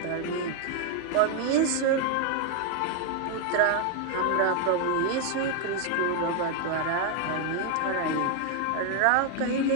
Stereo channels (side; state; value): both; different; correlation 0.01